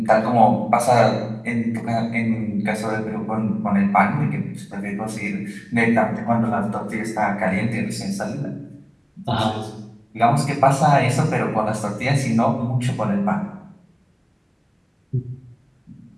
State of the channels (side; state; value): both; identical; correlation 1.00